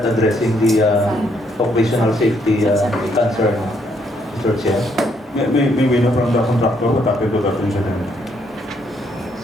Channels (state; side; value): normal; both; correlation 0.71